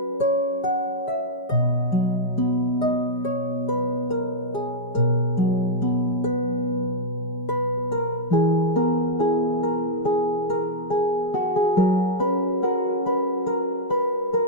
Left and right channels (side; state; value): right; late; 5.0 ms